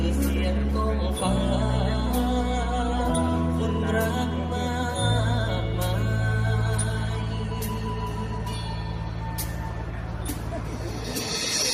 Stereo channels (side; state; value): both; identical; correlation 1.00